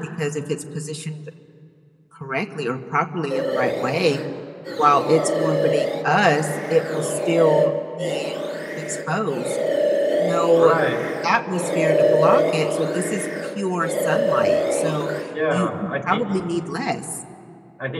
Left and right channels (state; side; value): identical; both; correlation 1.00